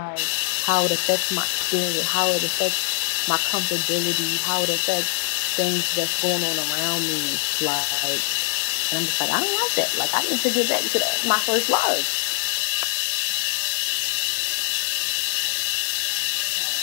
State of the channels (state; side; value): silent; right; 63 dB below the other